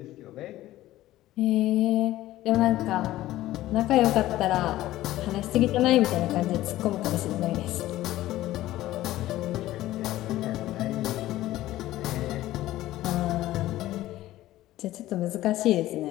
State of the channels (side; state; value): right; quieter; 15.4 dB